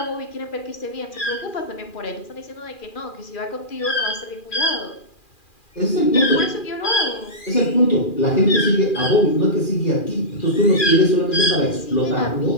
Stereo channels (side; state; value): right; late; 2.4 ms